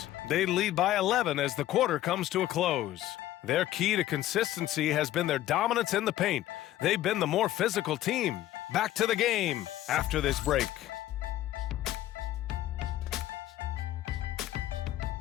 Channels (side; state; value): right; quieter; 13.9 dB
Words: They lead by 11 as the quarter comes to a close. Their key to consistency has been their dominance in the paint. They've been the more physical team. Back to the game after this break.